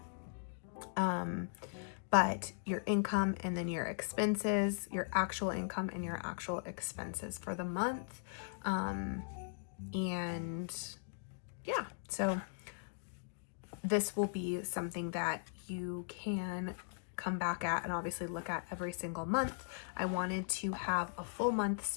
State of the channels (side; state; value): right; silent; digital silence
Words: but your income and then your expenses, your actual income and your actual expenses for the month. And yeah, so this will be something that you can come back at and obviously look at every single month. I wanted to have a full month